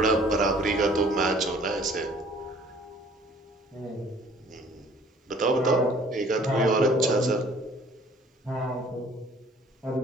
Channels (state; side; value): normal; both; correlation 0.54